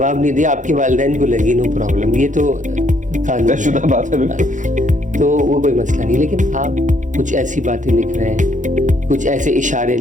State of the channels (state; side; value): late; left; 0.36 ms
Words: नहीं दिया, आपके वालिदैन को लगी, नो प्रॉब्लम, ये तो कानून बात है, तो वो कोई मसला नहीं। लेकिन आप कुछ ऐसी बातें लिख रहे हैं, कुछ ऐसे इशारे